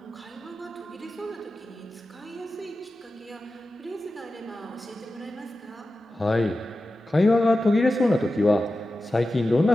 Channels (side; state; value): both; normal; correlation 0.93